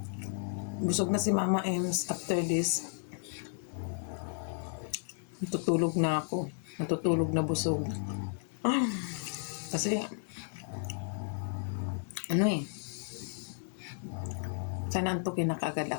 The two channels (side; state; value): right; silent; digital silence